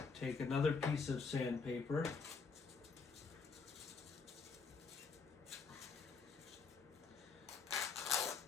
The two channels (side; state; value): right; quieter; 5.0 dB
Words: take another piece of sandpaper